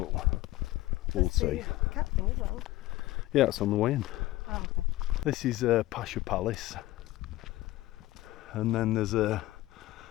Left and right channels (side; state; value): right; quieter; 16.9 dB